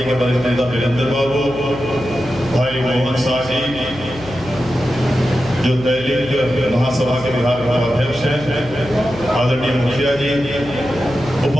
के वरिष्ठ नेता वीरेंद्र बाबू, भाई मोहन शाह जी जो दैनिक महासभा के बिहार का अध्यक्ष हैं, आदरणीय मुखिया जी,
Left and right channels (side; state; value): left; noise; hum, 16 dB below the sound